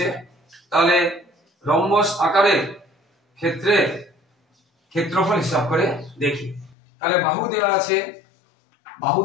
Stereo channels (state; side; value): drops out; right; at 6.8 s